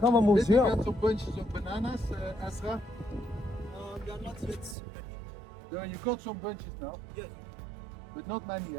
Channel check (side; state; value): left; drops out; at 4.8 s